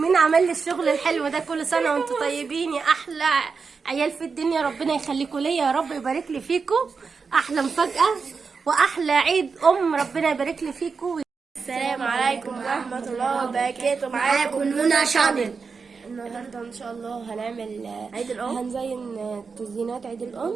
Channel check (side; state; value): left; quieter; 5.1 dB